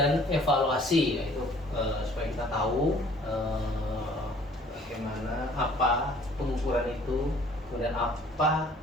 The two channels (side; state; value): both; normal; correlation 0.55